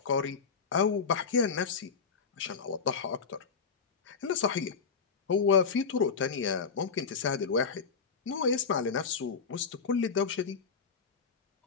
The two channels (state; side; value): quieter; right; 5.6 dB